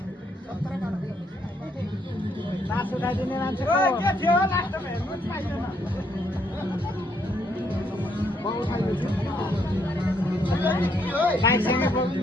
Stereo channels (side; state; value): both; normal; correlation 0.73